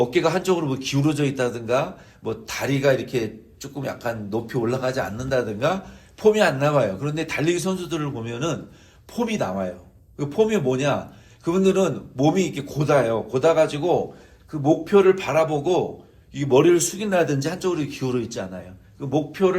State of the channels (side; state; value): both; identical; correlation 1.00